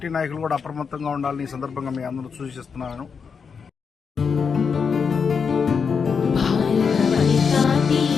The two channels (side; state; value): right; quieter; 5.9 dB